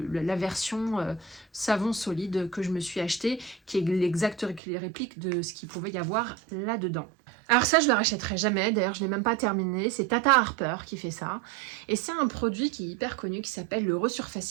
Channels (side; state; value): left; drops out; at 4.6 s